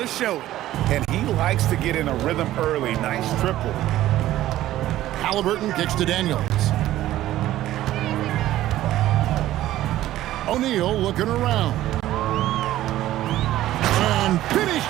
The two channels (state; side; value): quieter; left; 14.3 dB